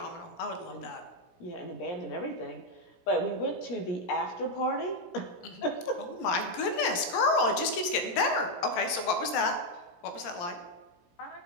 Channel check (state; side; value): late; right; 17 ms